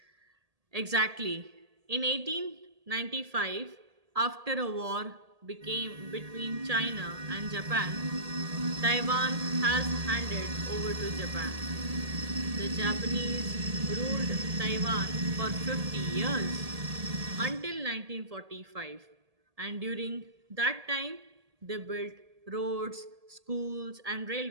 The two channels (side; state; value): left; late; 1.8 ms